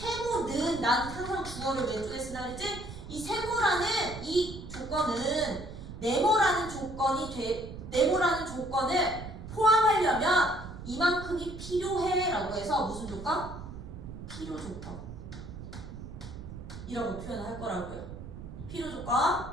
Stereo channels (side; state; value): right; noise; rumble, 11 dB below the sound